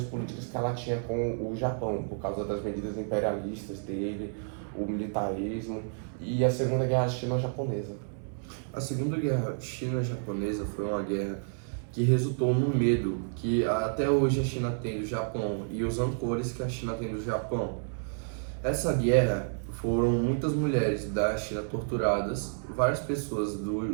políticas que ela tinha com o Japão, por causa das medidas imperialistas dele, o militarismo e a Segunda Guerra Chino-Japonesa. A Segunda Guerra China-Japonesa foi uma guerra que resultou no medo que até hoje a China tem do Japão e os rancores que a China tem do Japão. Essa guerra foram muitas mulheres da China torturadas, várias pessoas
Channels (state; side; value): silent; left; 58 dB below the other